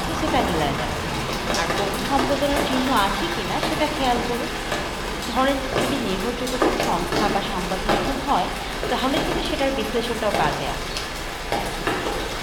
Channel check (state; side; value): identical; both; correlation 1.00